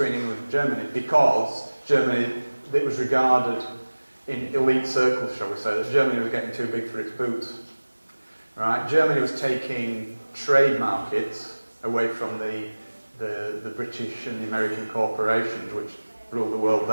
England and Germany because Germany, it was regarded in elite circles, shall we say, that Germany was getting too big for its boots. Right? Germany was taking trade markets away from the British and the American corporations, which ruled the world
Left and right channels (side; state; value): both; inverted; correlation -1.00